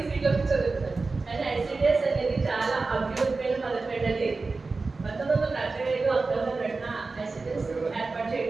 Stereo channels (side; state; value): left; quieter; 3.9 dB